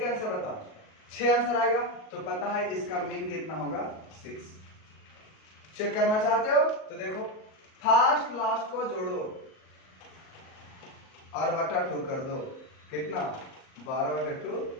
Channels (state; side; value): late; right; 38 ms